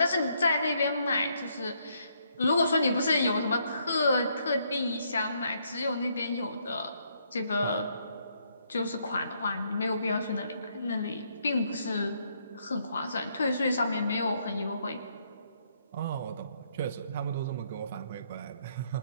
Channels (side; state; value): both; inverted; correlation -0.72